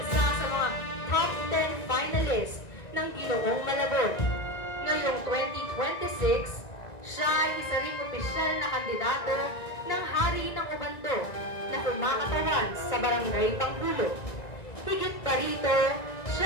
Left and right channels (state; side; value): late; right; 1.9 ms